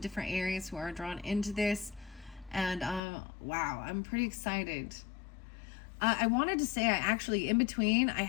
areas who are drawn into this. And wow, I'm pretty excited. I wanted to say, I actually, in between, I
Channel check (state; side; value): drops out; right; at 3.0 s